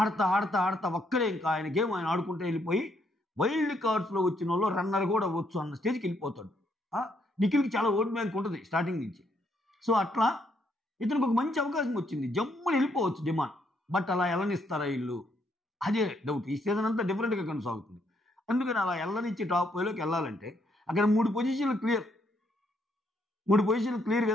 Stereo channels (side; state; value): both; normal; correlation 0.73